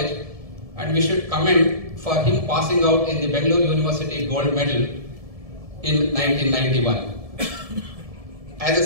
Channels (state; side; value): late; left; 1.7 ms